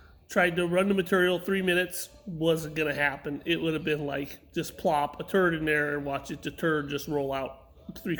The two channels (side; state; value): both; identical; correlation 1.00